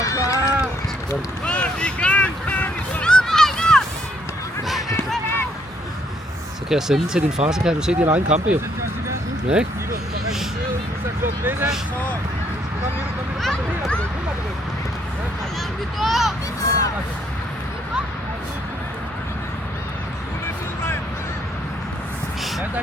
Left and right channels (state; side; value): normal; both; correlation 0.69